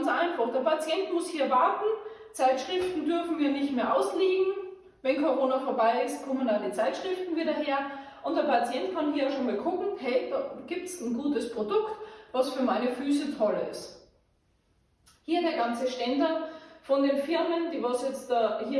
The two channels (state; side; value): identical; both; correlation 1.00